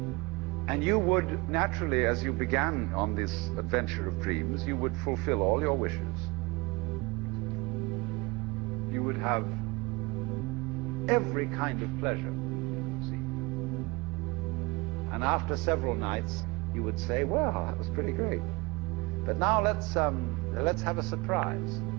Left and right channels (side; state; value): left; quieter; 24.7 dB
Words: And you would naturally, as you began on this adventure of dreams, you would fulfill all your wishes. You would have every kind of pleasure, see. And after several nights, you would say, well, that was pretty great. But now let's have a surprise.